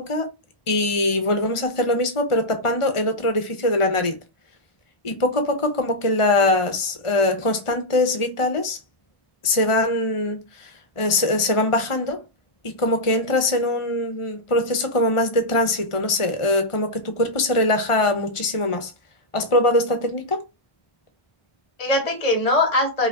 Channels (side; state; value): right; late; 1.4 ms